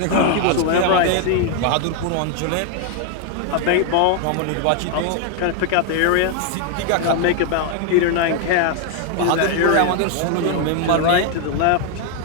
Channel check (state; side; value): different; both; correlation 0.00